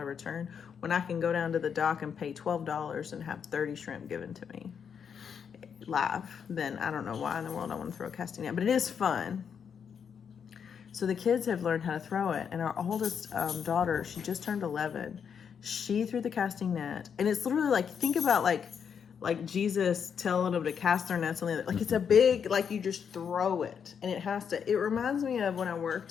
of return. When I can go down to the dock and pay $12 and have 30 shrimp given to me live, then I don't know why in the world I want to throw a casting net, but it is fun. So the kids have learned how to throw it, and our oldest daughter, she just turned 11. She threw the casting net, and it's literally like, think about like Jesus telling them to cast their nets on the other. Like it's a big, like you just throw it, and it reminds me of when I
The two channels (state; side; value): quieter; right; 7.2 dB